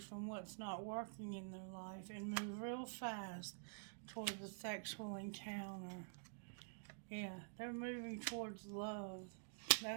what's not working in their life, and move real fast towards the sexual encounter. Yeah, they're moving towards love.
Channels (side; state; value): left; silent; digital silence